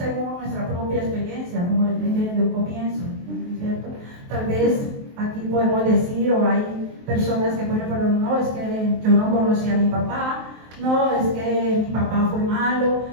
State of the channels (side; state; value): left; late; 23 ms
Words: nuestra propia experiencia, como les dije desde un comienzo, ¿cierto? Tal vez aquí podemos decir, o hay personas que pueden decir, no, es que yo no conocí a mi papá, no, es que mi papá fue malo,